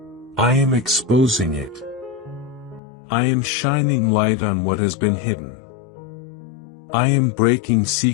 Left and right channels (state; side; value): drops out; right; at 2.8 s